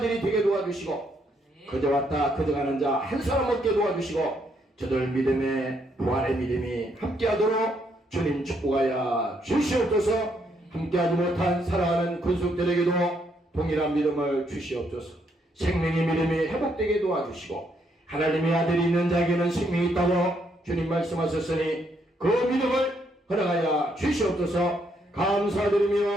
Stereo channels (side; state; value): both; normal; correlation 0.74